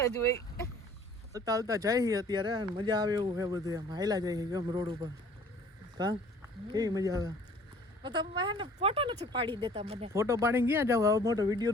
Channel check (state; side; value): normal; both; correlation 0.52